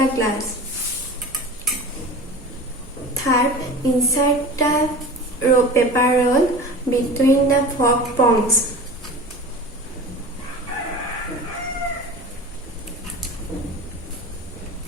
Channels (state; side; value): normal; both; correlation 0.35